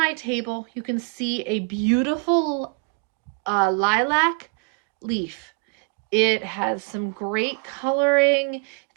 table you can see a beautiful lilac leaf. It has some great coloring.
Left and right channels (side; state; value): left; quieter; 34.4 dB